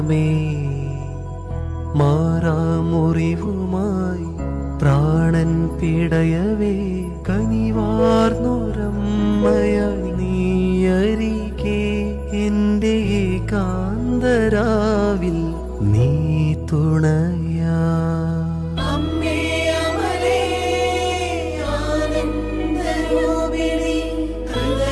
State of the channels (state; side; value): identical; both; correlation 1.00